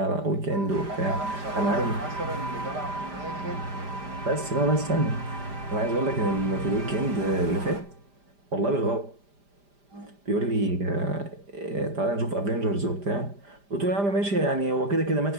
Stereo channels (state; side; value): late; left; 5.0 ms